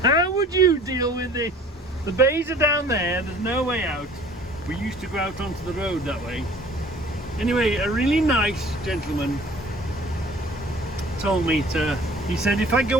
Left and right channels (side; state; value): both; normal; correlation 0.50